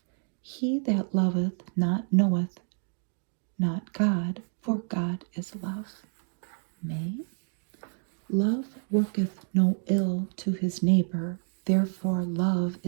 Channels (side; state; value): left; silent; 56 dB below the other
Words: He that loveth not knoweth not God, for God is love. May. Love worketh no ill to his neighbor, therefore love